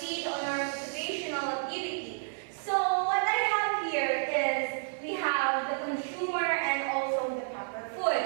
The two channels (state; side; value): silent; left; 57 dB below the other